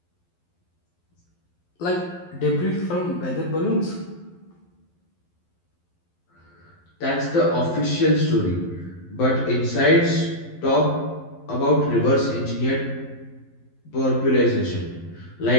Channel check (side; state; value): right; late; 11 ms